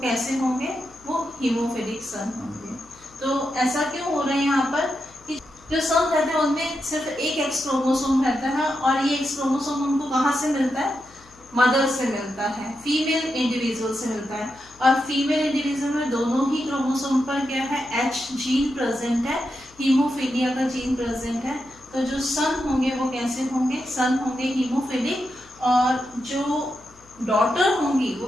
होंगे, वो हीमोफिलिक सन होंगे। तो ऐसा क्यों हो रहा है यहाँ पर कि जो सन रहते हैं उनमें सिर्फ एक एक्स क्रोमोसोम रहता है और ये एक्स क्रोमोसोम उनको कहाँ से मिलता है, मदर से मिलता है, फीमेल इंडिविजुअल से मिलता है। और फीमेल इंडिविजुअल में दोनों ही क्रोमोसोम पर क्या है, एच जीन प्रेजेंट है, हीमोफीलिया का जीन प्रेजेंट है। तो जो सन होंगे वो कैसे होंगे, सन होंगे हीमोफिलिक, और जो डॉटर होंगी वो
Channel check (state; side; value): noise; left; hum, 27 dB below the sound